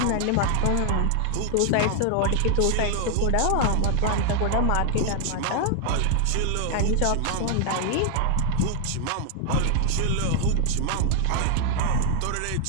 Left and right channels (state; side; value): different; both; correlation 0.00